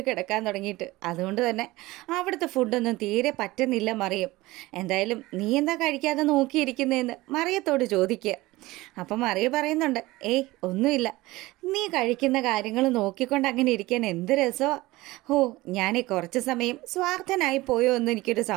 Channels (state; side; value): quieter; left; 19.5 dB